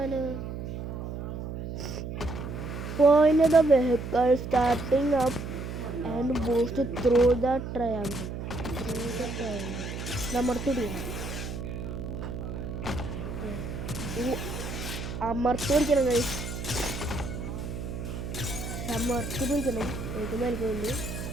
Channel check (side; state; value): right; noise; hum, 6 dB below the sound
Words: Point the vehicle starting up and boost through the triangle. അമർത്തിടിക്കണം. അമർത്തി പിടിക്കണം ഗൈസ്. അമർത്തി പിടിക്കണം. ഏറ്റവും മേൽക്കുണ്ട്